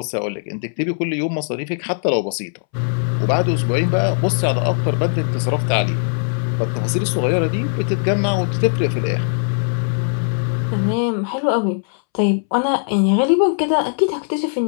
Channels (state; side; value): silent; right; 66 dB below the other